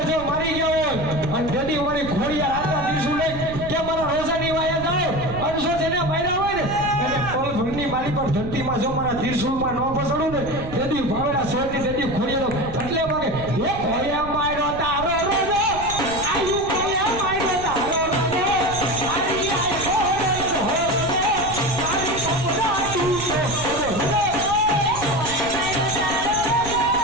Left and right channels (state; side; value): noise; right; rumble, 11 dB below the sound